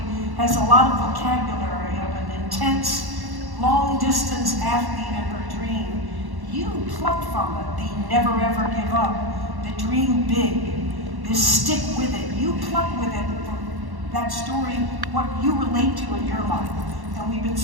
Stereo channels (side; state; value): left; late; 1.1 ms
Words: has a lot of vocabulary of an intense, long-distance athlete and her dream. You pluck from it the never ever give up, the dream big, the stick with it. You pluck with it from that story what you relate to in your life. And we've been